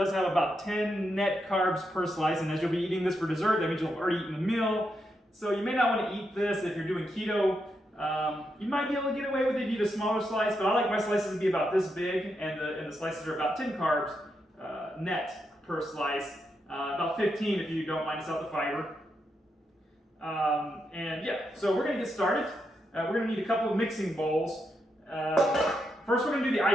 have about 10 net carbs per slice, and as you'll be eating this for dessert, that means you'll have already eaten a meal. So you may not want to eat this if you're doing keto. You might be able to get away with it if you eat a smaller slice, but I like my slices to be about this big, and the slices are about 10 carbs net per slice. About 15 if you don't minus out the fiber. And yeah, so we're going to get started. We're going to need a couple of mixing bowls. First we're going to do the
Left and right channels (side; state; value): both; normal; correlation 0.83